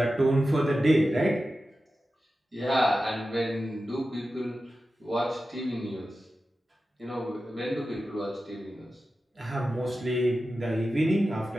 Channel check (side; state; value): both; normal; correlation 0.93